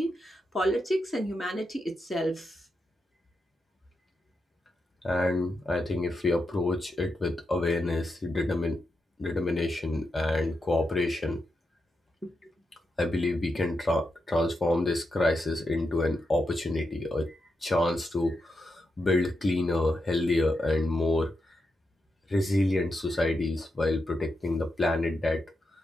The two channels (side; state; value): both; normal; correlation 0.86